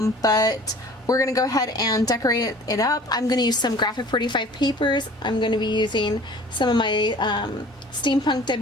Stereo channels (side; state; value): both; normal; correlation 0.47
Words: we're going to go ahead and decorate it up. I'm going to use some Graphic 45 papers. I'm going to be using some of my Steampunk